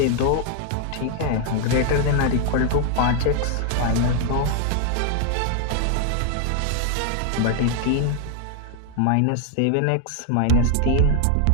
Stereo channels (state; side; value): different; both; correlation 0.00